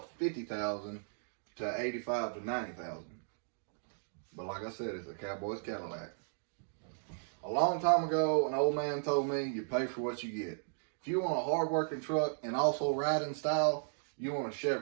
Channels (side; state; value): left; silent; digital silence